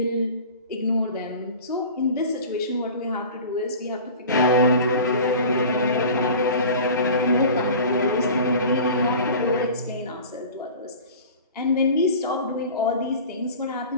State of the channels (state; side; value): inverted; both; correlation -0.39